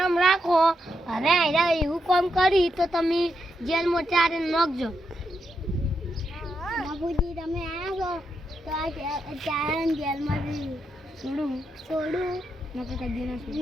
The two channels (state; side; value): normal; both; correlation 0.83